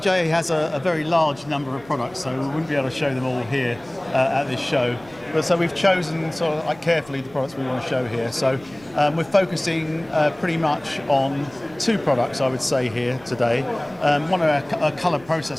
has a very large number of products, so we wouldn't be able to show them all here at this show. But so we've chosen sort of like carefully the products we want to show here. So we're focusing pretty much on two products, I would say, here today. One of our color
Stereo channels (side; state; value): right; noise; hum, 24 dB below the sound